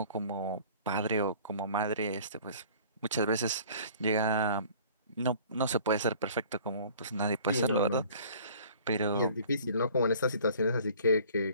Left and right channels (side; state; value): both; inverted; correlation -0.50